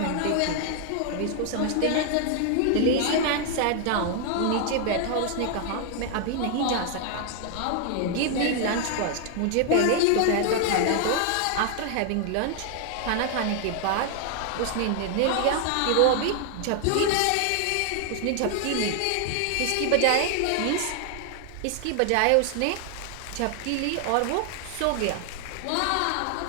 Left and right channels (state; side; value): different; both; correlation 0.00